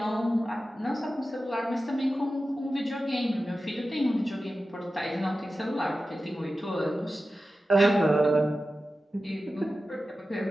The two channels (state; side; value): normal; both; correlation 0.94